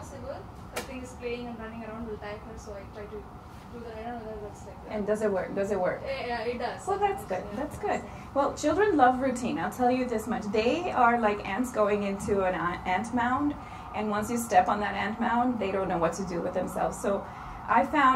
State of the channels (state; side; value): identical; both; correlation 1.00